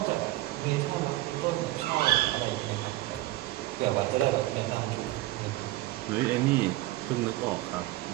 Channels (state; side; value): quieter; left; 17.2 dB